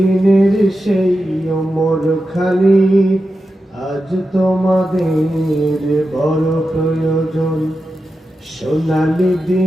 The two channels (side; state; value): both; normal; correlation 0.90